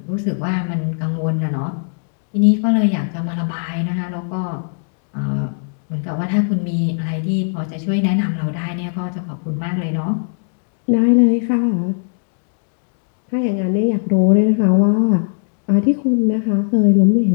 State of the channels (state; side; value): silent; right; digital silence